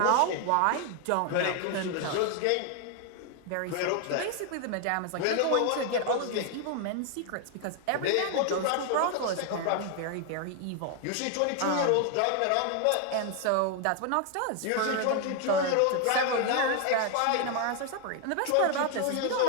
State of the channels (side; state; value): both; different; correlation 0.00